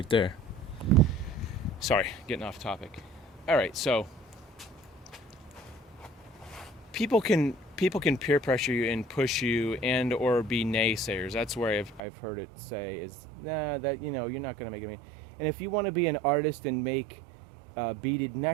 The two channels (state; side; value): drops out; left; at 12.0 s